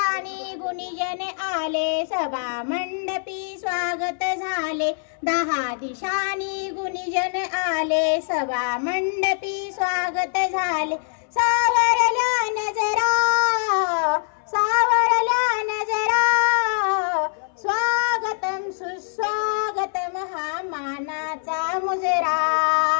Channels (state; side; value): silent; right; 63 dB below the other